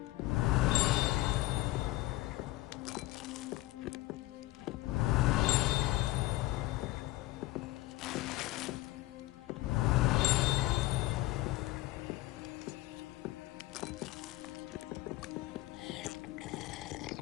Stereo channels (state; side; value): quieter; right; 18.4 dB